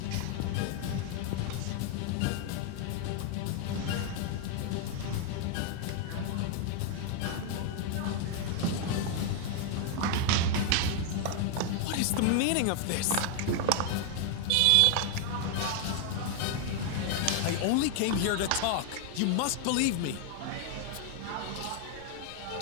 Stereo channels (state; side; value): different; both; correlation 0.00